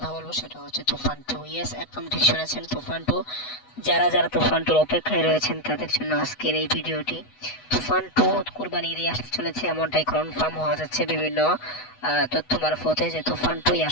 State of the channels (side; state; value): right; late; 8.1 ms